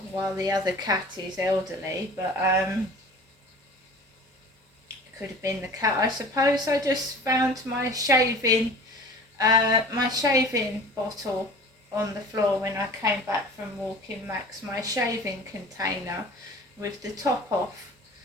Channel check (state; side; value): normal; both; correlation 0.42